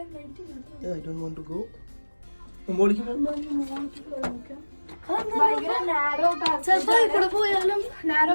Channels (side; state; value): both; inverted; correlation -1.00